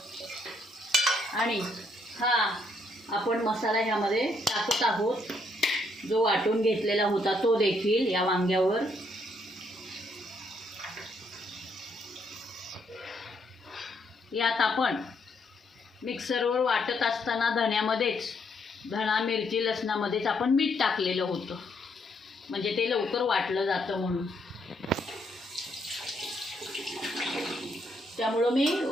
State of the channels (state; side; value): normal; both; correlation 0.73